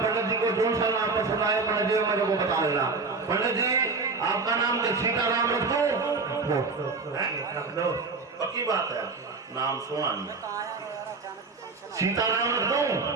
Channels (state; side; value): quieter; left; 4.1 dB